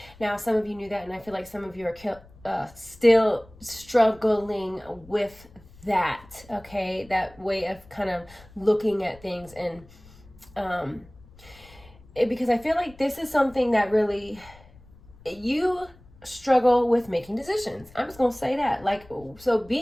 Now, some of you knew that, and I feel like some of you are still struggling with that, okay? That way of kind of looking at things, and because I feel like this is something that really, you struggle with making decisions. I'm just gonna say that. Like, so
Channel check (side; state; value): left; noise; rumble, 24 dB below the sound